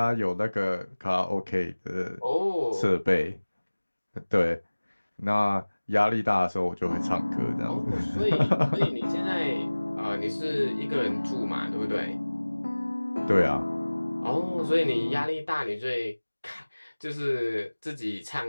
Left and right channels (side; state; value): both; inverted; correlation -1.00